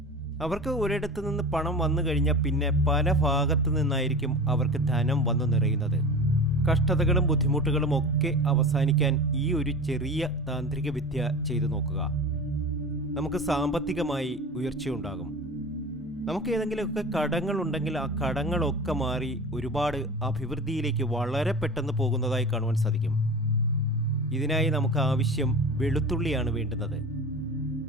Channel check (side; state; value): both; normal; correlation 0.33